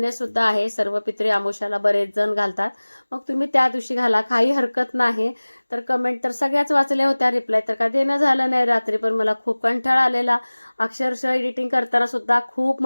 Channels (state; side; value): inverted; both; correlation -1.00